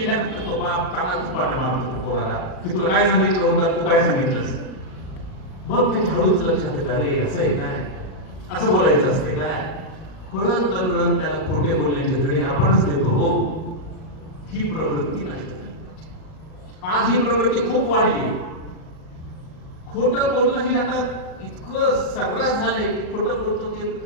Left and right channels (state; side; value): late; right; 38 ms